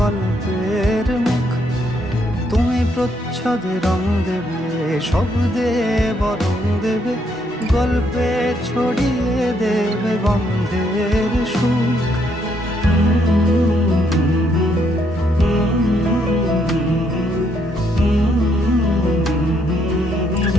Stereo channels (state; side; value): normal; both; correlation 0.73